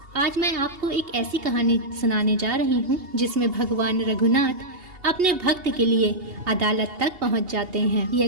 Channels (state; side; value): late; left; 2.8 ms